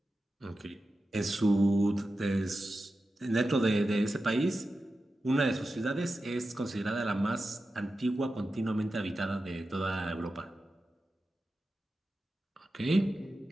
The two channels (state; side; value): normal; both; correlation 0.92